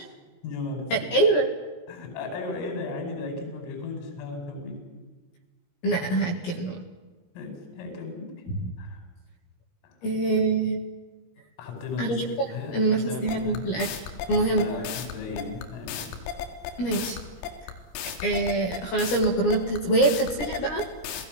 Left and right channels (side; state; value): right; late; 17 ms